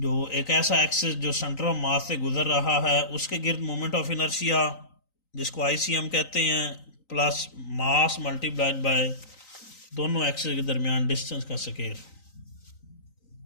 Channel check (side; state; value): right; late; 3.9 ms